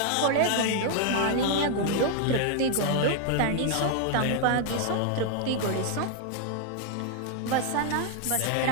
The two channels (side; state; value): both; different; correlation 0.00